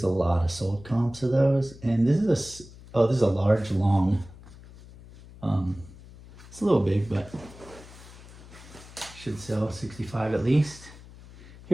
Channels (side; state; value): left; noise; hum, 19 dB below the sound